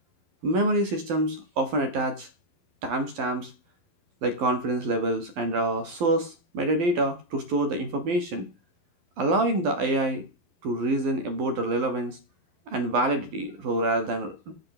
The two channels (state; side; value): late; left; 12 ms